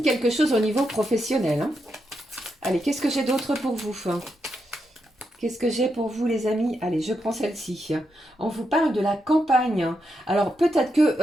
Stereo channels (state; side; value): normal; both; correlation 0.83